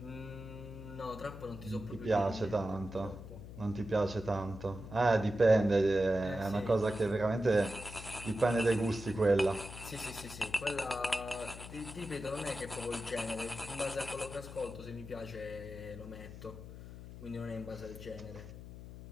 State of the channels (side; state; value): left; noise; hum, 13 dB below the sound